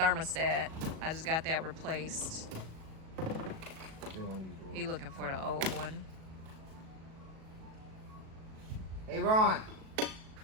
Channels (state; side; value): late; left; 37 ms